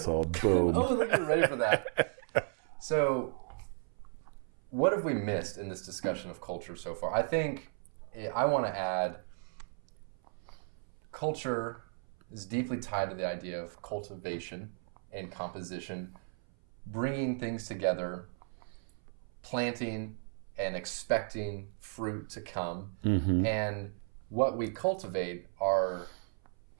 Boom. Oh, look, you're ready for that. So, what have we missed in this discussion of culture so far? I think I want to add culture is deeply tied to the idea of cultivation and composition, bringing things together, planting and expecting fruit to come. Mm-hmm. And what we cultivate are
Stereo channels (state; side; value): silent; left; 54 dB below the other